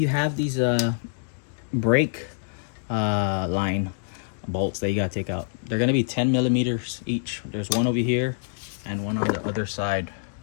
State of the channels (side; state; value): right; silent; digital silence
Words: have these brake line bolts that you gotta take out. They're gonna be 10 millimeters each. There's one over here and one on the other side.